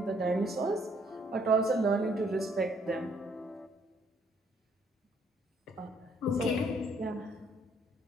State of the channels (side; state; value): both; normal; correlation 0.66